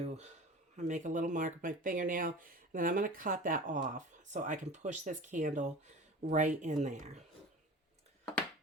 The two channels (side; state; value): both; normal; correlation 0.36